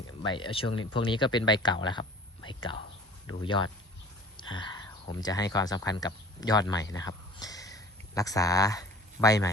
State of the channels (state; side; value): normal; both; correlation 0.46